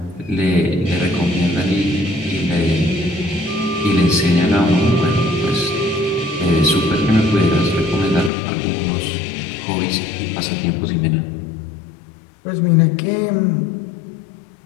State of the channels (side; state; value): right; drops out; at 8.3 s